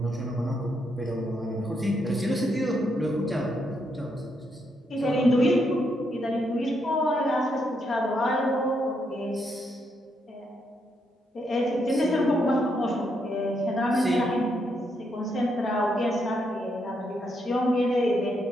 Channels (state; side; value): normal; both; correlation 0.78